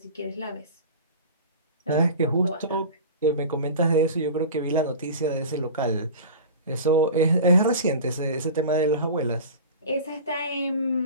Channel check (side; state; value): both; inverted; correlation -0.34